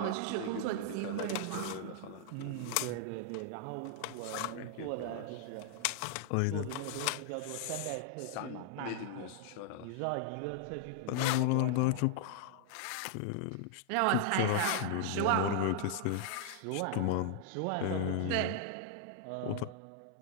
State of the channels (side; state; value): both; different; correlation -0.01